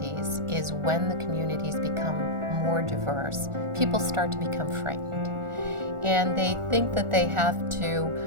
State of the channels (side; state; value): left; late; 1.4 ms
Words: is when the communities become more diverse, people start to become frightened. And they think that they have to,